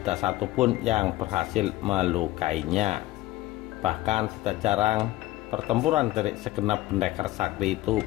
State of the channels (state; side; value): quieter; right; 17.1 dB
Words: satupun yang berhasil melukainya. Bahkan tidak jarang pertempuran dari segenap pendekar sakti itu